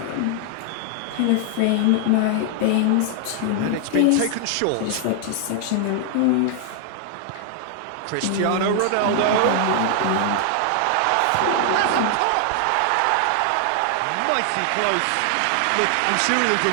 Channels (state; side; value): different; both; correlation 0.00